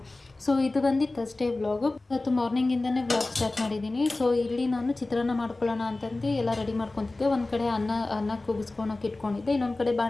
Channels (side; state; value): right; quieter; 3.0 dB